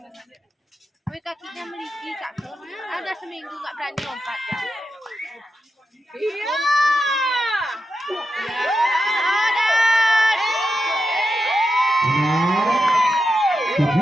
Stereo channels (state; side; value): normal; both; correlation 0.88